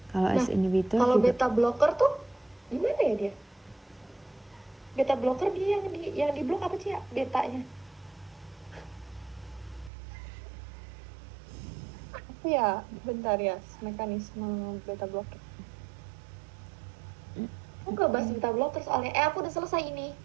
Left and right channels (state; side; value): drops out; left; at 9.9 s